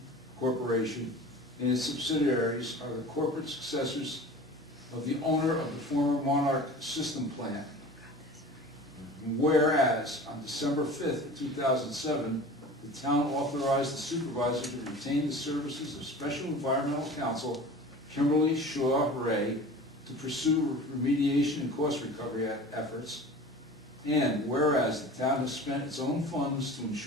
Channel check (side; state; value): both; normal; correlation 0.39